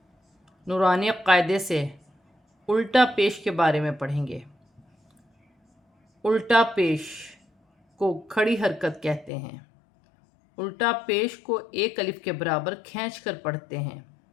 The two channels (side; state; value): right; drops out; at 9.3 s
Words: نورانی قاعدے سے الٹا پیش کے بارے میں پڑھیں گے۔ الٹا پیش کو کھڑی حرکت کہتے ہیں۔ الٹا پیش کو ایک الف کے برابر کھینچ کر پڑھتے ہیں۔